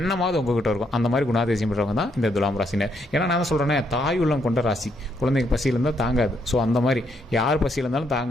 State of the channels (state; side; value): normal; both; correlation 0.74